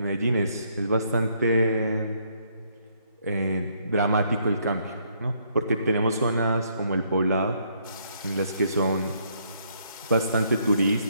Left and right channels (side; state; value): both; inverted; correlation -0.70